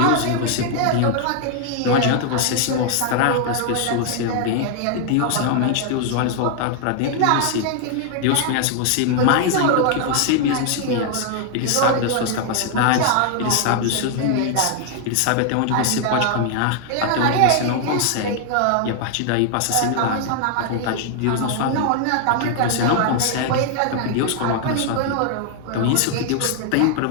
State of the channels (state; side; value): different; both; correlation 0.00